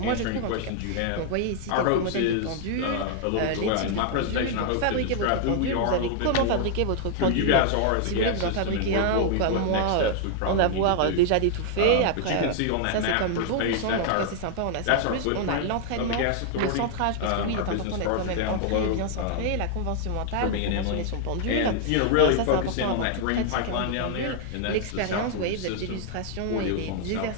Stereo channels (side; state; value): both; different; correlation 0.00